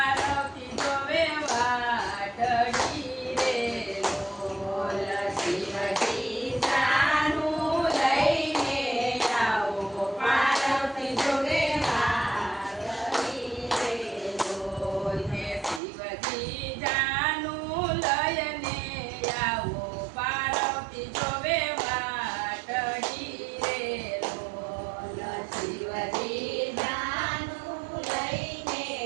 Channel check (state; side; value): drops out; left; at 15.8 s